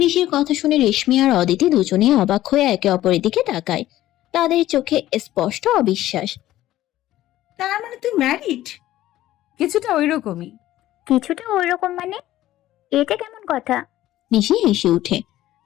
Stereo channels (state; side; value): quieter; right; 14.5 dB